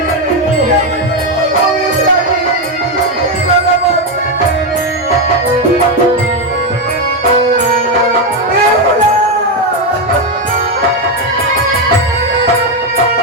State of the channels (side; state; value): both; normal; correlation 0.07